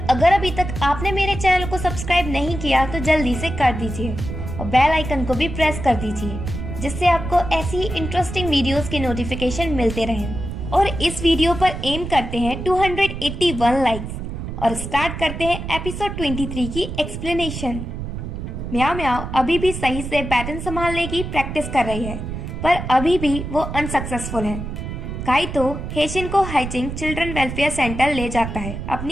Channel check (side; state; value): right; noise; rumble, 6 dB below the sound